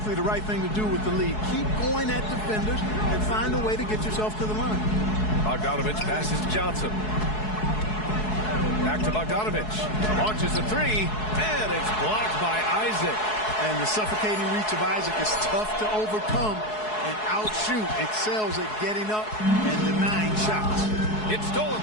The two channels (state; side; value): late; right; 4.7 ms